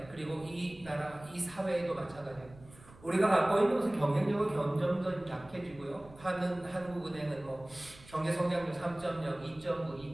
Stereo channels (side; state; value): right; noise; rumble, 22 dB below the sound